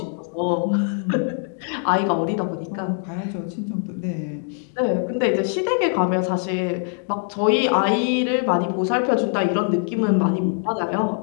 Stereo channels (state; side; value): silent; right; 56 dB below the other